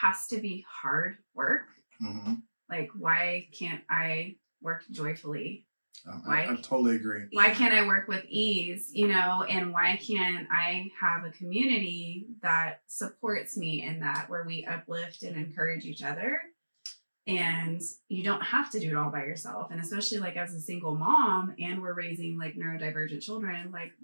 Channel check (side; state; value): both; inverted; correlation -1.00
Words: to be hard work. Mm-hmm. Like, why can't I work joyfully? I totally agree. Why can't I work with ease, you know, and why can't I have a community that supports me in that, where we uplift and encourage each other? And you don't have to do it all by yourself. And especially like as a single mom, and we're raising like neurodivergent children, like,